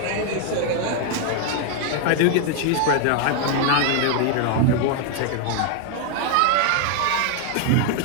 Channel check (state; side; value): different; both; correlation 0.00